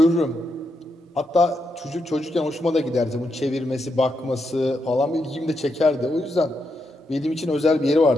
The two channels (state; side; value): normal; both; correlation 0.83